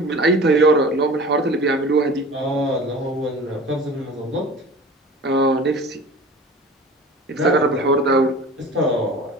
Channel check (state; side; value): normal; both; correlation 0.40